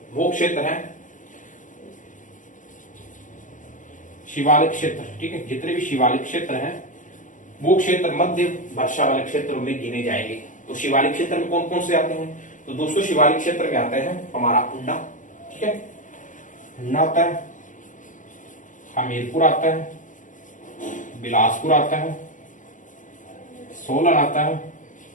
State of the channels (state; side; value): late; right; 0.37 ms